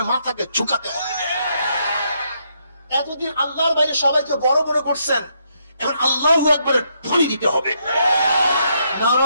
মাথাকে ঝুঁকাতে হবে। এতদিন আল্লাহর বাইরে সবাইকে বড় বড় করছেন, এখন আল্লাহু আকবারের ধ্বনি দিতে হবে।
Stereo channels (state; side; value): inverted; both; correlation -0.76